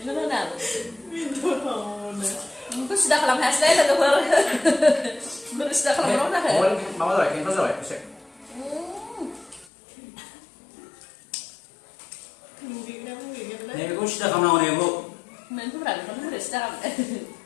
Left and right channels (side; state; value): right; drops out; at 9.7 s